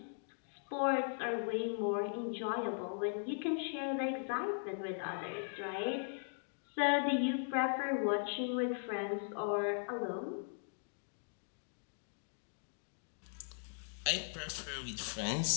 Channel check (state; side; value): silent; right; digital silence